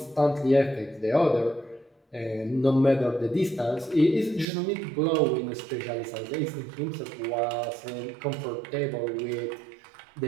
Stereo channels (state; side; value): drops out; left; at 4.5 s